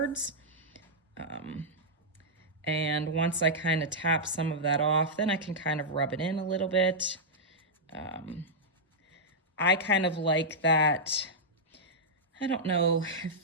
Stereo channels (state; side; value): normal; both; correlation -0.09